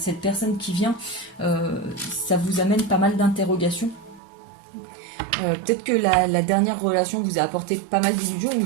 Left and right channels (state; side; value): drops out; left; at 4.2 s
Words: personne qui vient. Ça vous amène pas mal d'interrogations. Peut-être que la dernière relation vous a apporté pas mal d'illusions, ou